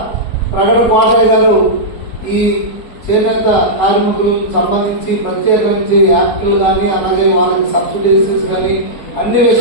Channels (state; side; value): late; right; 4.2 ms